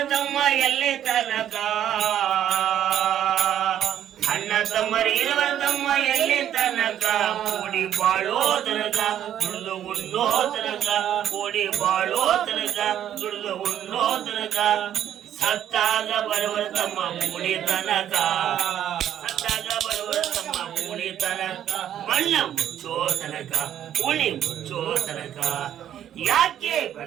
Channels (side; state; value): left; quieter; 10.7 dB